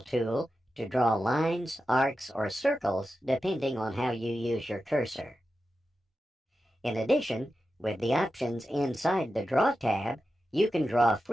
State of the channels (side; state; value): both; normal; correlation 0.91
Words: tool to draw lines, arcs, or circles depending on how you use your cursor. In addition, with the options inside the Draw tab, you can draw